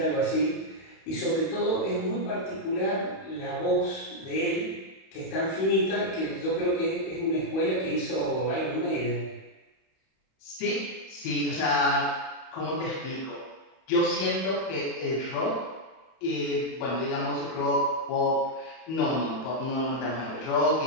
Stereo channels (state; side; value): late; right; 31 ms